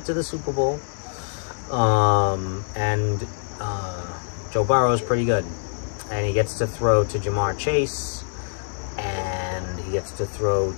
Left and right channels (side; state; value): right; silent; 62 dB below the other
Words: to the Super Bowl. Joe Burrow is pretty good, and he gets to throw to Jamar Chase, and he gets to throw